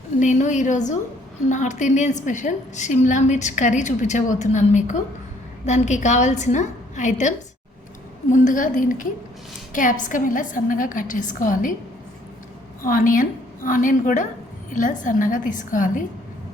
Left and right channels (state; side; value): normal; both; correlation 0.63